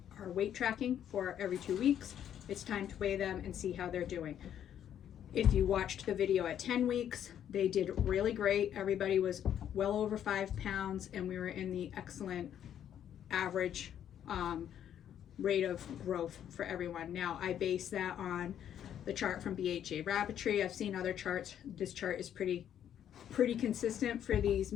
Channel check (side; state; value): right; quieter; 9.9 dB